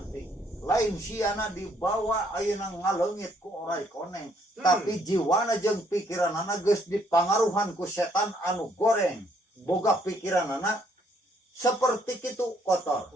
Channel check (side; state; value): both; normal; correlation 0.68